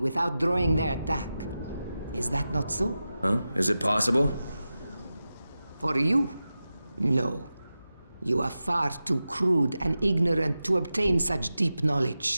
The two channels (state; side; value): inverted; both; correlation -0.93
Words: drawing their attack. Is that not so? Huh? Is it possible? For you? No. You are far too crude and ignorant to obtain such deep